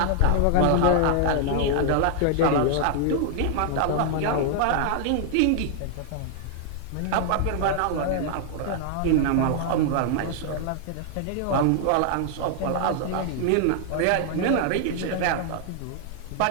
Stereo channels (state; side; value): different; both; correlation 0.00